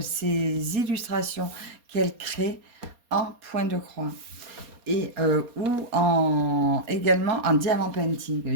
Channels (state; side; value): late; left; 4.3 ms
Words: ces illustrations qu'elle crée en point de croix et également en diamant painting.